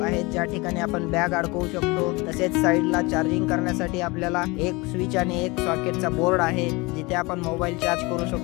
ज्या ठिकाणी आपण बॅग अडकवू शकतो। तसेच साईडला चार्जिंग करण्यासाठी आपल्याला एक स्विच आणि एक सॉकेटचा बोर्ड आहे जिथे आपण मोबाईल चार्ज करू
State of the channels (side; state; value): right; quieter; 24.9 dB